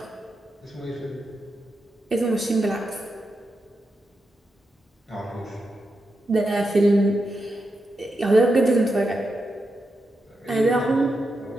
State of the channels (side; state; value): both; normal; correlation 0.87